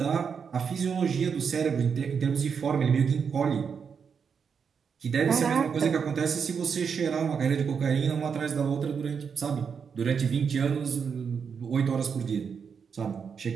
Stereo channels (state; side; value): quieter; left; 6.4 dB